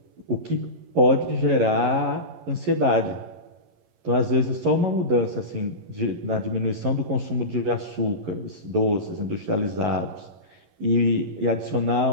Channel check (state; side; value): late; left; 11 ms